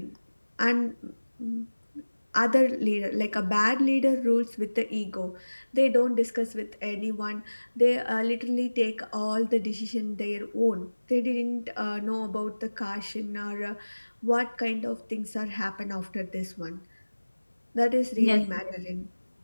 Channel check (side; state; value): both; inverted; correlation -1.00